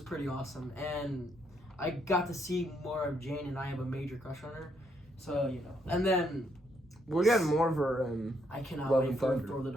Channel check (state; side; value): normal; both; correlation 0.74